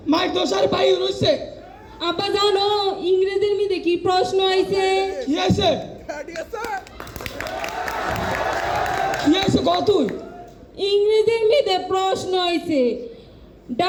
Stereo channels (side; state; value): both; identical; correlation 1.00